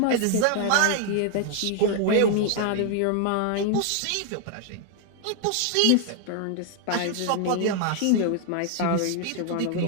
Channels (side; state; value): both; different; correlation 0.00